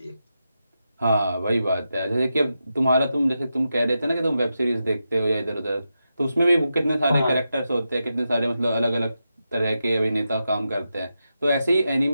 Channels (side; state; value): both; inverted; correlation -0.88